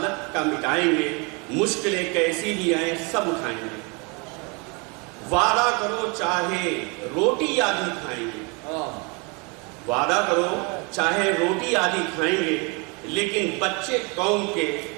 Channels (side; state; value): left; quieter; 31.0 dB